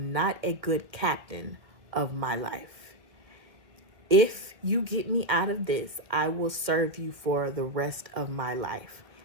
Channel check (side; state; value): left; late; 1.8 ms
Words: not a good captain of my life. If you get me out of this, I will serve you for the rest of my life.